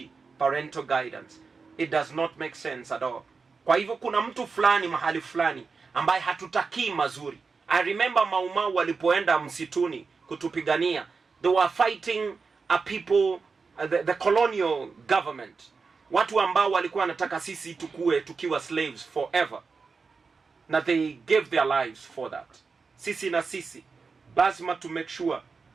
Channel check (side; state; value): left; quieter; 4.8 dB